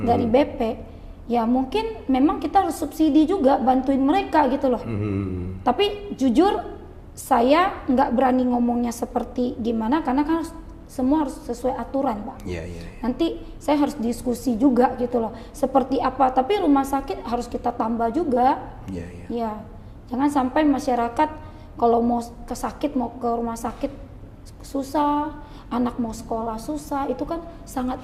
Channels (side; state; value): both; identical; correlation 1.00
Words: BP, ya mungkin memang kita harus subsidi juga, bantuin mereka gitu loh. Tapi jujur saya nggak berani ngomongnya seperti gimana, karena kan semua harus sesuai aturan Pak. Nanti saya harus diskusi juga gitu loh, seperti apa, tapi rumah sakit harus kita tambah juga. Ya, jangan sampai masyarakat kalau mau ke rumah sakit susah, anak mau sekolah susah, itu kan